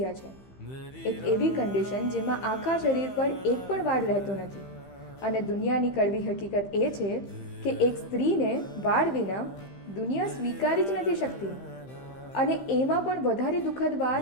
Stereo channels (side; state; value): right; late; 15 ms